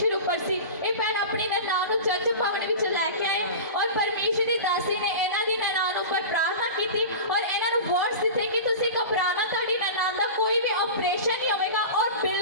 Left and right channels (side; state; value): both; inverted; correlation -0.31